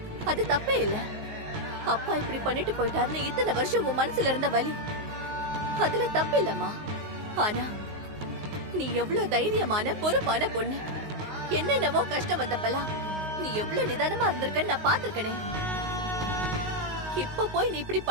அது தப்பே இல்ல. அப்பா இப்படி பண்ணிட்டு போயிட்டாருன்னு இத்தனை வருஷம் உன் மனசுல இருந்த வலி, அதுல தப்பு இல்லம்மா. ஆனா நீ எவ்வளவு தைரியமான பொறுப்பான பொண்ணு. என்னென்னவோ கஷ்டம் வந்தப்பெல்லாம் நீ எவ்வளவு நிதானமா இருந்திருக்கன்னு நான் பாத்திருக்கனே. இப்ப போய் நீ இப்படி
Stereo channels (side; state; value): left; late; 19 ms